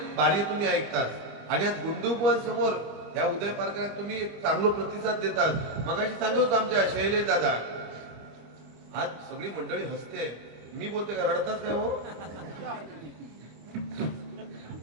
बारी तुम्ही ऐकतात आणि आज गुंडू बुवांसमोर या उदय पार्कात तुम्ही एक चांगला प्रतिसाद देतात मगाशी सांगत होतो आमच्या शैलेश दादा आज सगळी मंडळी हसते मी बोलते का रडताच काय हो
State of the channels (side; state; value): left; late; 25 ms